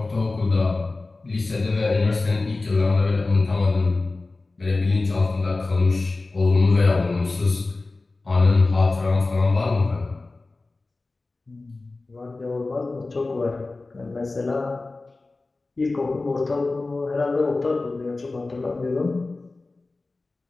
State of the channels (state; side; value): quieter; right; 3.4 dB